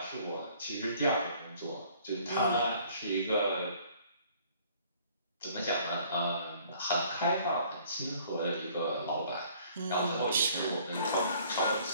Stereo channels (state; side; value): inverted; both; correlation -0.57